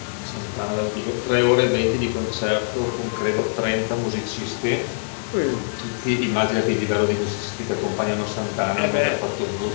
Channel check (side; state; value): right; silent; digital silence